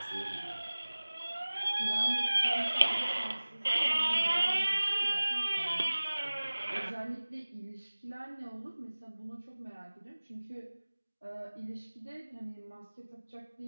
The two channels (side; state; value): both; inverted; correlation -1.00